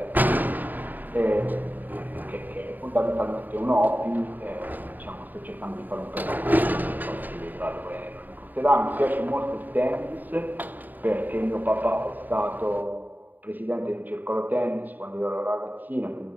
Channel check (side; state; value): left; late; 0.087 ms